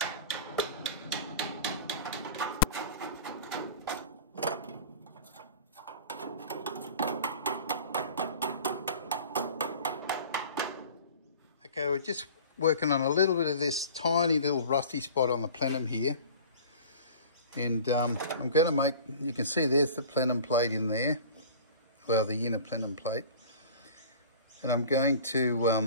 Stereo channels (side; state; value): both; inverted; correlation -0.41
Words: Okay, we're just working on a little bit of this tiny little rusty spot on the plenum here. And I'm going to make, you can see there's the plenum plate in there. Well, the inner plenum plate. And I'm going